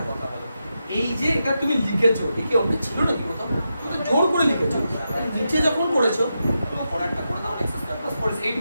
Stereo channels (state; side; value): inverted; both; correlation -0.87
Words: কথা বলো, এই যে এটা তুমি লিখেছো একে অঙ্ক ছিল নাকি কোথাও? তুমি তো জোর করে লিখেছো। নিচে যখন করেছো তো পরেরটা করে দাও x স্কয়ার প্লাস 4x। এই